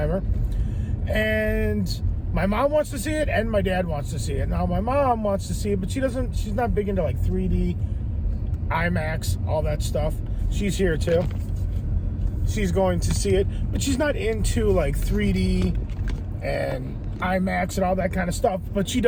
And my mom wants to see it and my dad wants to see it. Now, my mom wants to see it, but she's not big into like 3D, IMAX, all that stuff. She's here too. She's going to see it, but she's not into like 3D and IMAX and all that kind of stuff, but she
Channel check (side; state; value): both; identical; correlation 1.00